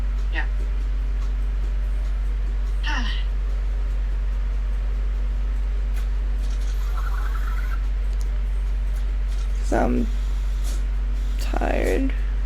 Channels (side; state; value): both; identical; correlation 1.00